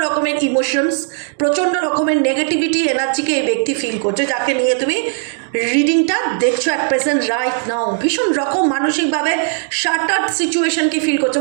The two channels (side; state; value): left; silent; 57 dB below the other